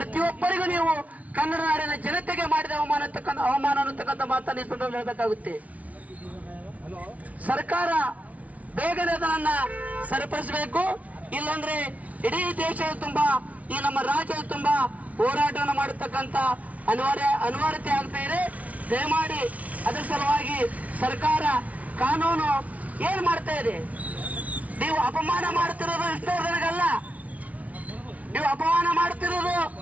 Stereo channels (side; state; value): left; late; 0.069 ms